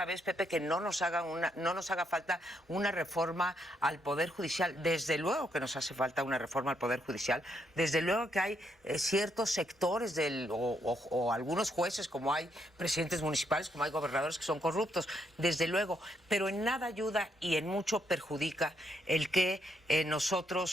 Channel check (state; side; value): normal; both; correlation 0.76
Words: vez, Pepe, que no nos haga falta una reforma al Poder Judicial. Desde luego que nos hace falta una reforma al Poder Judicial. Desde luego que hay ciertos sectores o algunos jueces, como hay presidentes municipales, como hay gobernadores que son corruptos. Desde luego. Pero en nada ayuda y en mucho perjudica el que